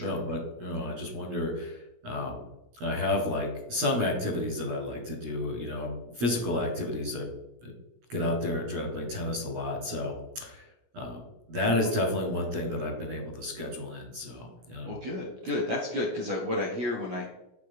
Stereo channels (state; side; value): late; left; 17 ms